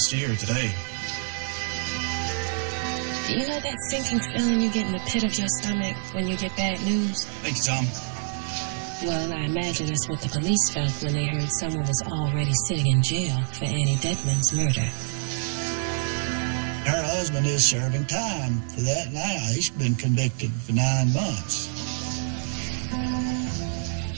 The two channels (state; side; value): silent; left; digital silence